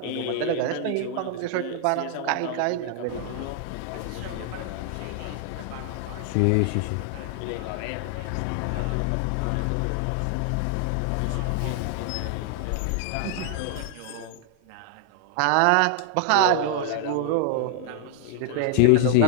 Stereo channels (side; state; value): both; different; correlation 0.00